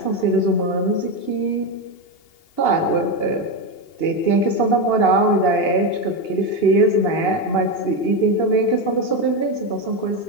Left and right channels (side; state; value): right; late; 2.8 ms